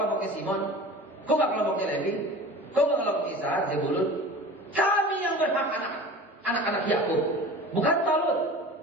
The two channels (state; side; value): normal; both; correlation 0.38